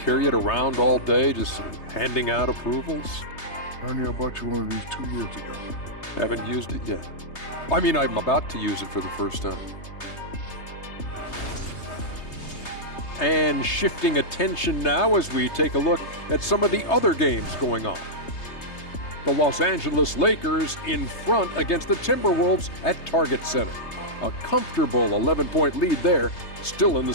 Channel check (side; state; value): right; late; 3.3 ms